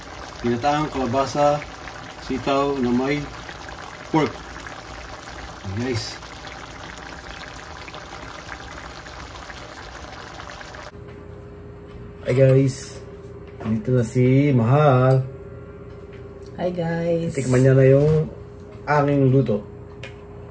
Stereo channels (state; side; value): identical; both; correlation 1.00